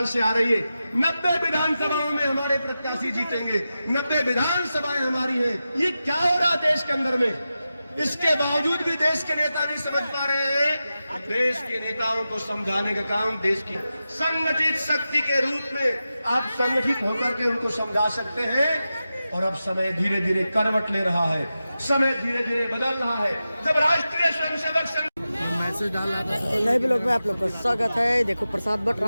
आ रही है। 90 विधानसभाओं में हमारे प्रत्याशी जीतेंगे, 90 विधानसभाएं हमारी हैं। ये क्या हो रहा देश के अंदर में? इसके बावजूद भी देश के नेता नहीं समझ पा रहे हैं। देश के नेताओं को समझाने का काम देश की संगठित शक्ति के रूप में आप संगठित होकर के उनको समझा सकते हैं। और अब समय धीरे धीरे करवट ले रहा है, समय धीरे धीरे बदल रहा है। जब राष्ट्रीय स्वयंसेवक संघ मैसेज डाला था नए ब्लॉग में आप लोग का स्वागत है। देखो प्रसाद बट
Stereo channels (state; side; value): inverted; both; correlation -0.92